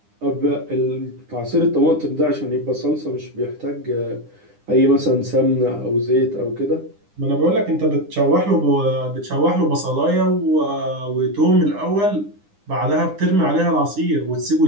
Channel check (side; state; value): left; late; 9.9 ms